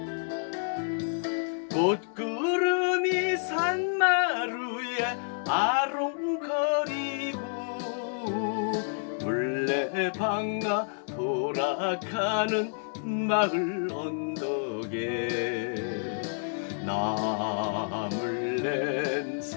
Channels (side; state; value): right; silent; digital silence